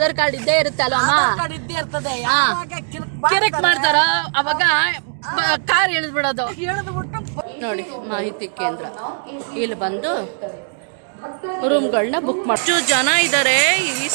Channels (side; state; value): left; silent; 66 dB below the other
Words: ಕಾರ್ಡ್ ಇದ್ದೇ ಇರುತ್ತೆ ಅಲ್ವಮ್ಮ, ಕಿರಿಕ್ ಮಾಡ್ತಾರ ಅವಾಗ ಕಾರ್ ಎಳೆದ್ಬಿಡೋದು. ನೋಡಿ ಮಾಹಿತಿ ಕೇಂದ್ರ, ಇಲ್ಲಿ ಬಂದು ರೂಮ್ಗಳನ್ನ ಬುಕ್ ಮಾಡಿ. ಎಷ್ಟು ಜನ ಇದ್ದಾರೆ ಈ